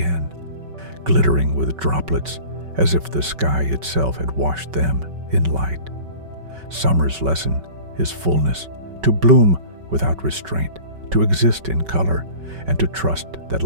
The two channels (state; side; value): late; left; 5.3 ms